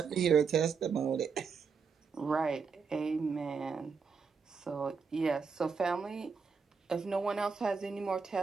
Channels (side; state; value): left; quieter; 5.5 dB